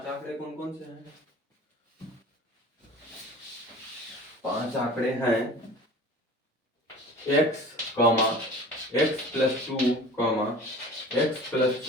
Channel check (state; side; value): normal; both; correlation 0.41